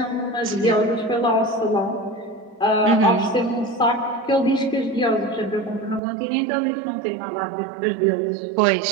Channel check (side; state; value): left; drops out; at 6.0 s